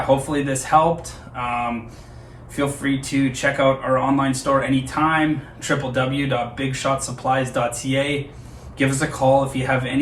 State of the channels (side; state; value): both; identical; correlation 1.00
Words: hopefully this helped. Feel free to check out our online store anytime, www.bigshotsupplies.ca. Give us a call if you have